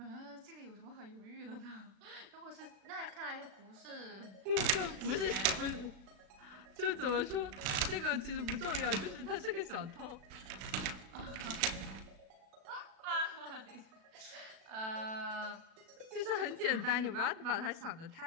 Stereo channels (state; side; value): late; left; 36 ms